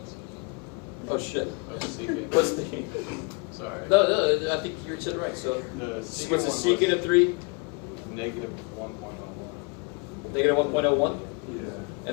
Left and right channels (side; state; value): right; quieter; 31.8 dB